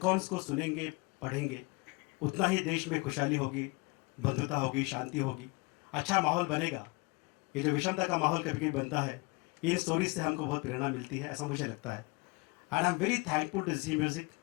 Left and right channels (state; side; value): quieter; right; 28.0 dB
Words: को सुनेंगे, पढ़ेंगे, उतना ही देश में खुशहाली होगी, बंधुता होगी, शांति होगी, अच्छा माहौल बनेगा। ये जो विषमता का माहौल कभी कभी बनता है, इन स्टोरीज से हमको बहुत प्रेरणा मिलती है, ऐसा मुझे लगता है। And I am very thankful to Zee music,